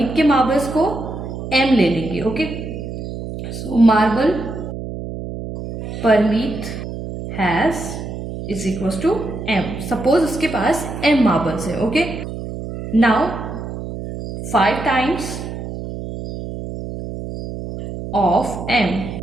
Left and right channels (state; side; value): noise; right; hum, 8 dB below the sound